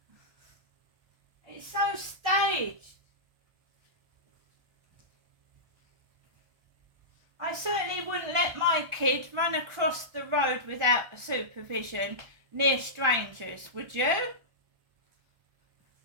It's so kid run across the road without supervision near strangers, would you?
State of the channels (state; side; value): late; left; 1.4 ms